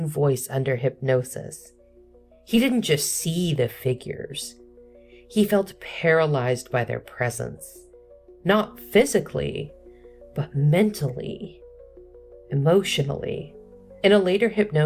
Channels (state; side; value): identical; both; correlation 1.00